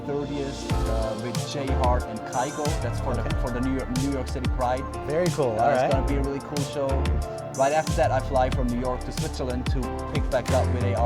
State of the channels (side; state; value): both; identical; correlation 1.00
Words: with Jay Hart and Kygo. That's for the New York City Pride. Very cool. All right. It's going to be a really cool show. Right after that, I fly from New York to Switzerland to pick back up with an